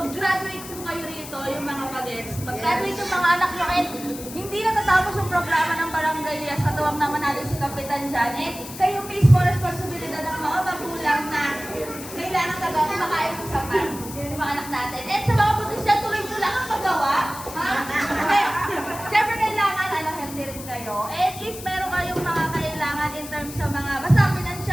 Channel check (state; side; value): noise; left; hiss, 13 dB below the sound